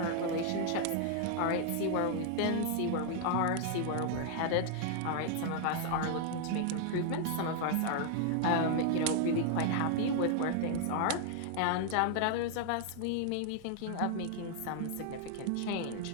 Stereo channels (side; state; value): both; different; correlation 0.00